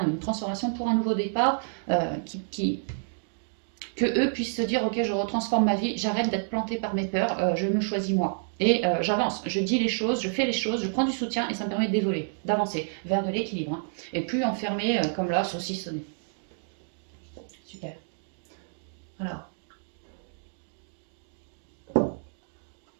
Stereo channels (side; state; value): left; silent; digital silence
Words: une transformation pour un nouveau départ que eux puissent se dire ok, je retransforme ma vie, j'arrête d'être planté par mes peurs, je me choisis moi. Et j'avance, je dis les choses, je fais les choses, je prends du soutien et ça me permet d'évoluer, d'avancer vers de l'équilibre. Hein, et plus enfermé comme là, saucissonné. Super. Alors.